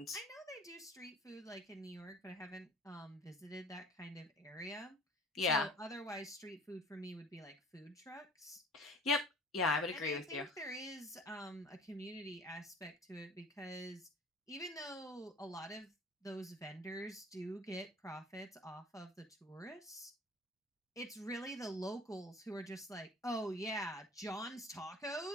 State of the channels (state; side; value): normal; both; correlation 0.46